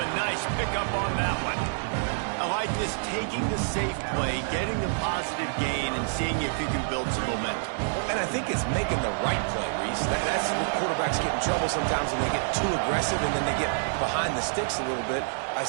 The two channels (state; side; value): silent; left; digital silence